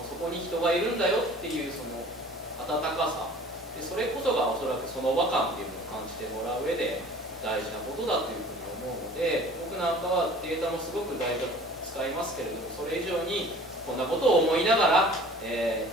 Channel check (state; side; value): normal; both; correlation 0.47